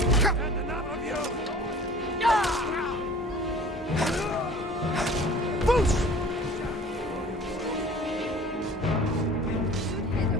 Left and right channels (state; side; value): normal; both; correlation 0.46